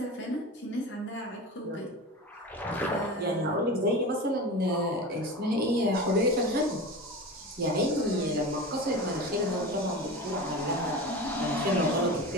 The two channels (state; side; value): normal; both; correlation 0.29